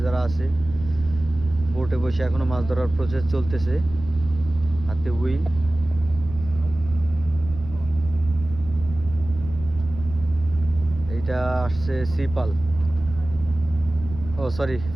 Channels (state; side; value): noise; right; rumble, 12 dB below the sound